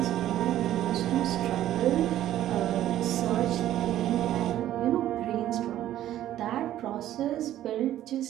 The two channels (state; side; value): quieter; left; 12.7 dB